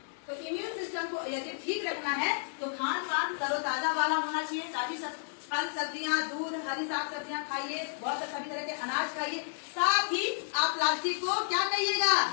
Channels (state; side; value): silent; right; digital silence